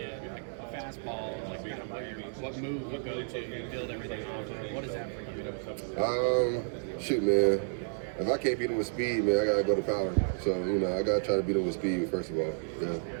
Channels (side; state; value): left; silent; digital silence